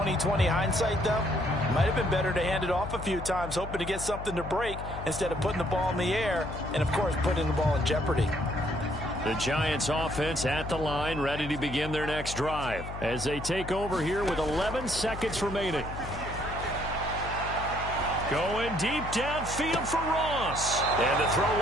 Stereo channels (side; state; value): left; noise; hum, 9 dB below the sound